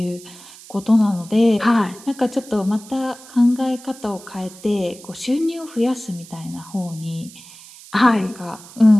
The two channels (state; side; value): noise; right; hiss, 19 dB below the sound